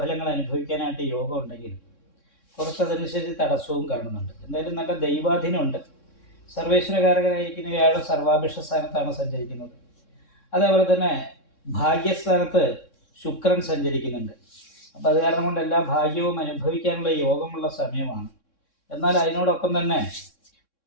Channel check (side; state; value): right; late; 3.6 ms